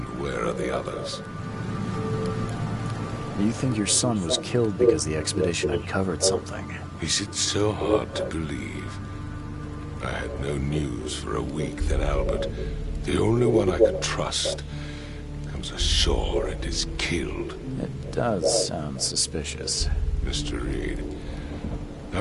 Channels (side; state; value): both; identical; correlation 1.00